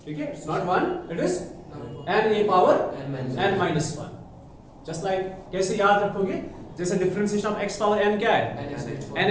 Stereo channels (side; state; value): both; identical; correlation 1.00